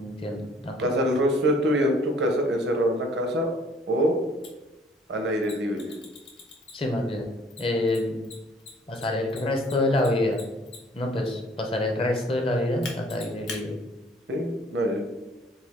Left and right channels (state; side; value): normal; both; correlation 0.58